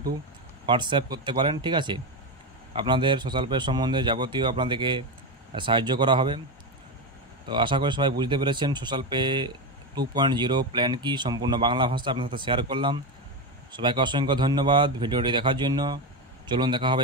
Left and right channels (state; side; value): normal; both; correlation 0.14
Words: হোয়াটসঅ্যাপ করতে পারেন। ঠিক আছে, আপনাদের সোশ্যাল পে সম্বন্ধে যাবতীয় আপনাদেরকে সাহায্য করা হবে। তো আশা করি সবাই বুঝতে পেরেছেন সোশ্যাল পে 2.0 প্ল্যান কি, সম্পূর্ণ বাংলা ভাষা আপনার সাথে শেয়ার করলাম। সবাইকে অসংখ্য ধন্যবাদ ভিডিওটি দেখার জন্য। চলুন দেখা